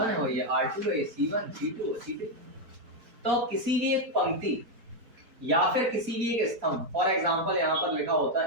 है और ये R2 है, ये C1 C2 C3। तो किसी भी एक पंक्ति या फिर किसी भी एक स्तंभ, फॉर एग्जांपल यहाँ पर लिखा होता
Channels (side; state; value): left; late; 4.1 ms